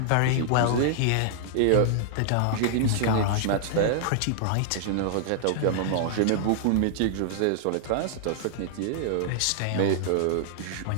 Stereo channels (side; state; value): both; different; correlation -0.01